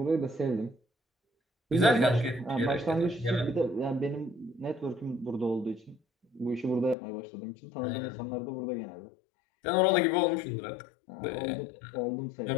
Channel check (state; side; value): drops out; right; at 7.0 s